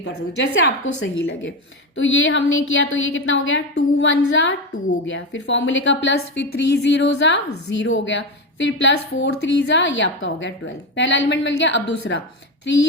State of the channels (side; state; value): both; normal; correlation 0.15